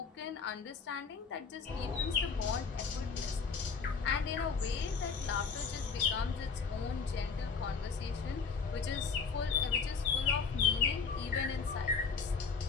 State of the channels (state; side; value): quieter; right; 5.4 dB